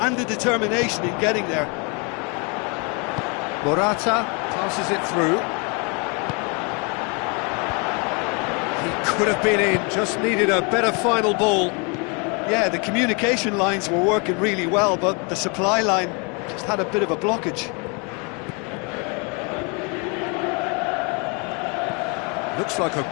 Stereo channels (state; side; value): quieter; right; 33.1 dB